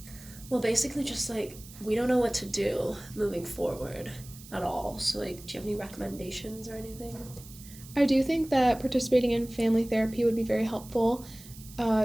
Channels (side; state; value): right; noise; hiss, 18 dB below the sound